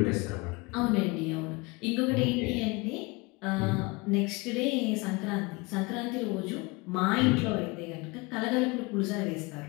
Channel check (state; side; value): quieter; right; 25.7 dB